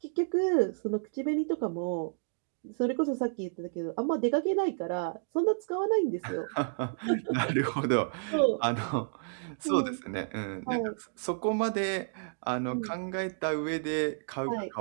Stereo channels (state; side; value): silent; left; digital silence